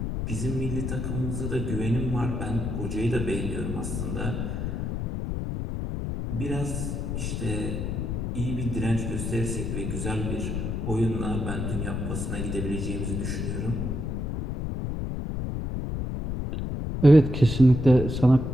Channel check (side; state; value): left; noise; rumble, 2 dB below the sound